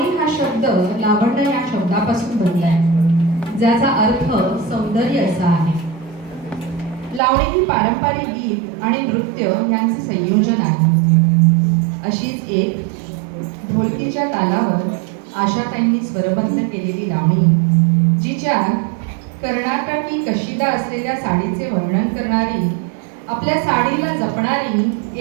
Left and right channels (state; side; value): drops out; left; at 7.2 s